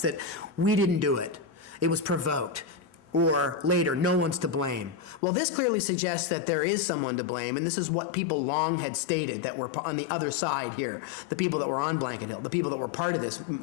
that we didn't do it. It was provoked. Or later, no one's to blame. Well, this clearly suggests that there is someone to blame, and this is what people long had stated that were on the other side here, the people that were on Blanket Hill, the people that were part of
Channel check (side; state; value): right; drops out; at 5.2 s